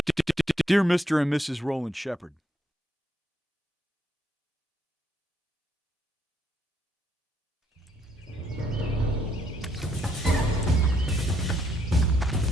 Dear Mr. and Mrs. Roland Shepard,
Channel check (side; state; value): both; normal; correlation 0.72